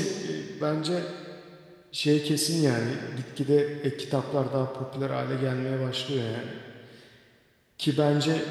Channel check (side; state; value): both; identical; correlation 1.00